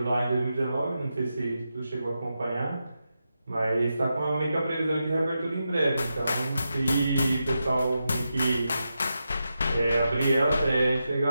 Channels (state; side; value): inverted; both; correlation -0.88